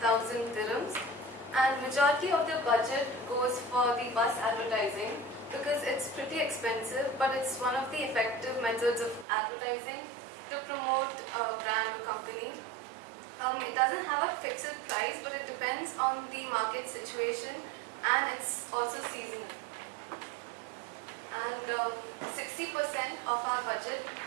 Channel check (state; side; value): drops out; left; at 9.2 s